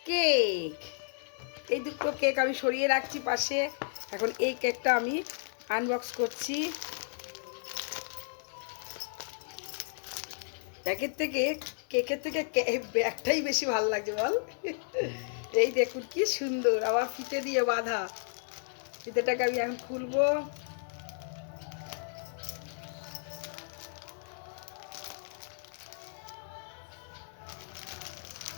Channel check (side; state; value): right; silent; digital silence